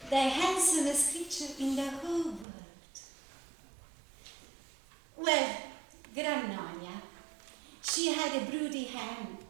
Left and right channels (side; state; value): left; drops out; at 2.5 s